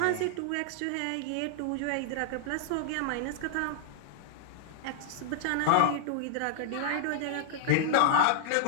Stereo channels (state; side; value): different; both; correlation -0.01